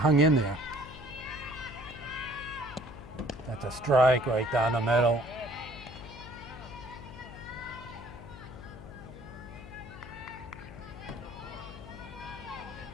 in there. That's a strike right down the middle.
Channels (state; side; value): noise; left; hum, 14 dB below the sound